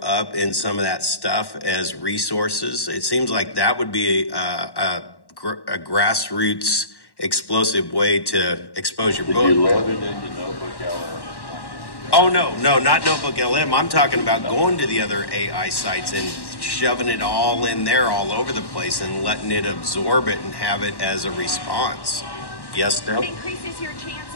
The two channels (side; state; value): right; late; 1.1 ms